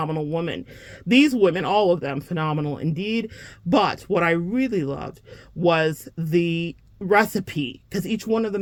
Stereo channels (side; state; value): both; identical; correlation 1.00